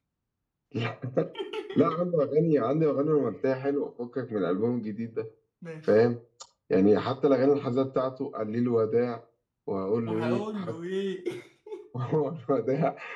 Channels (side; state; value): both; identical; correlation 1.00